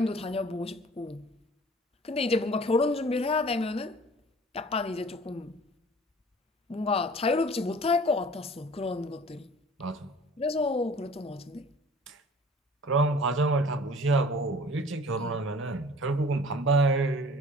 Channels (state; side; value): normal; both; correlation 0.47